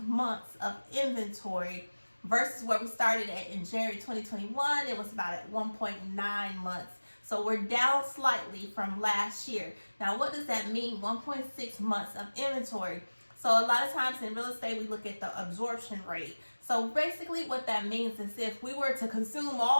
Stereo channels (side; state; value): both; inverted; correlation -1.00